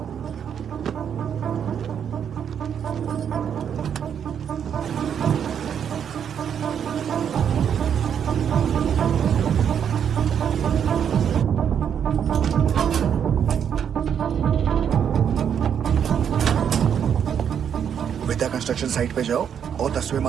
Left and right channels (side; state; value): left; quieter; 8.3 dB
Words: विद्या कंस्ट्रक्शन साइट पे जाओ और 10वें